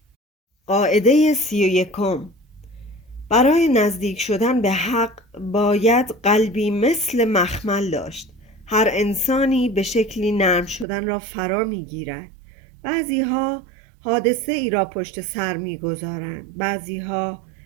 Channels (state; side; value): drops out; left; at 10.9 s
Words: قاعده 31: برای نزدیک شدن به حق باید قلبی مثل مخمل داشت. هر انسانی به شکلی نرم شدن را فرا می گیرد. بعضی ها حادثه ای را پشت سر می گذارند، بعضی ها